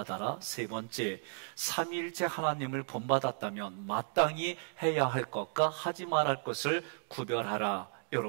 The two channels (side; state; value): left; silent; 55 dB below the other